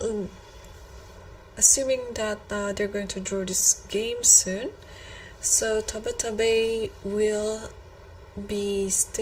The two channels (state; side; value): identical; both; correlation 1.00